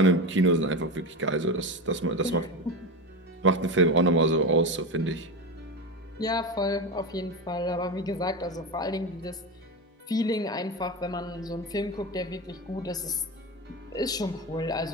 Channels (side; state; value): both; normal; correlation 0.20